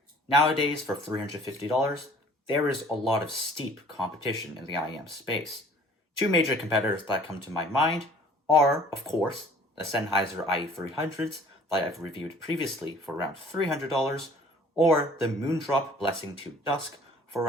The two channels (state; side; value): normal; both; correlation 0.51